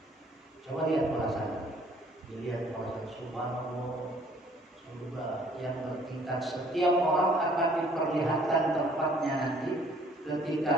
Coba lihat perasaan. Dilihat perasaan subhanallah, surga yang bertingkat. Setiap orang akan diperlihatkan tempatnya nanti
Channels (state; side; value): normal; both; correlation 0.59